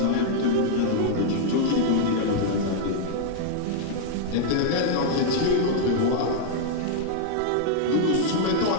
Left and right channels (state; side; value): different; both; correlation -0.01